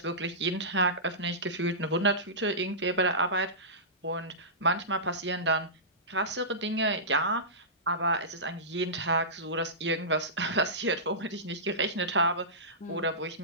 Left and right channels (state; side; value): normal; both; correlation -0.18